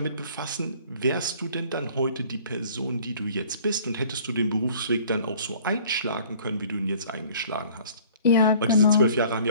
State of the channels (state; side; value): inverted; both; correlation -0.52